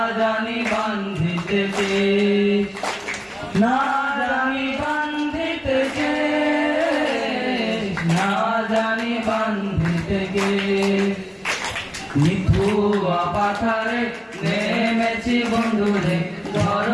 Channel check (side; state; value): both; identical; correlation 1.00